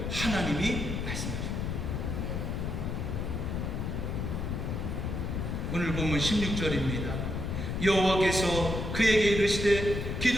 하나님이 말씀하십니다. 오늘 보면 16절입니다. 여호와께서 그에게 이르시되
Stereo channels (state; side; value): noise; left; rumble, 2 dB below the sound